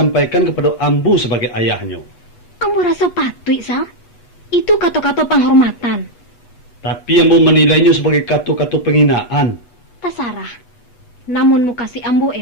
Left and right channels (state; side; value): late; right; 8.1 ms